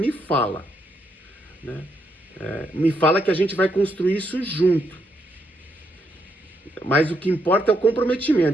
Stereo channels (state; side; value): normal; both; correlation 0.77